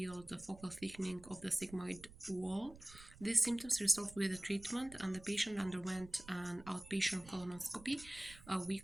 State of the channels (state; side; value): noise; right; rumble, 19 dB below the sound